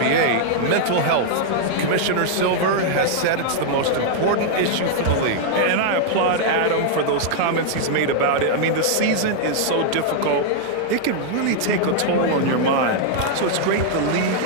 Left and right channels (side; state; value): both; different; correlation -0.01